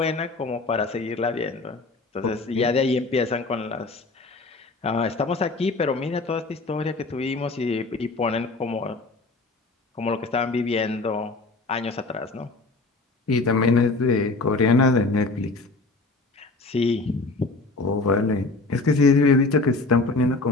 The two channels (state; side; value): quieter; right; 3.5 dB